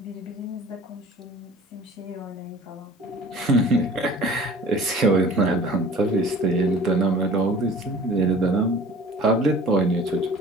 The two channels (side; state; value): both; normal; correlation 0.46